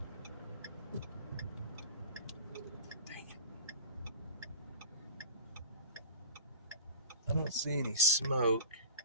Dang it. I don't see any smoke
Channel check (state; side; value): inverted; both; correlation -0.37